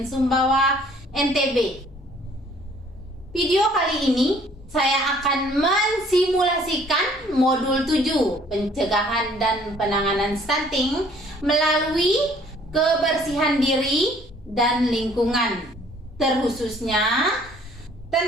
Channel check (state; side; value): normal; both; correlation 0.58